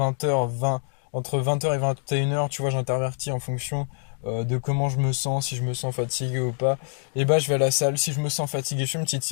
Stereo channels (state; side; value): silent; right; 61 dB below the other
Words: 20, entre 20h et 21h, tu vois, j'intervertis en fonction de comment je me sens, si je me sens fatigué ou pas. Et bah, je vais à la salle. Si je me sens fatigué, je fais une petite